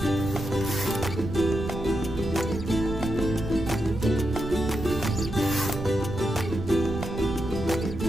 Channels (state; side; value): noise; right; rumble, 8 dB below the sound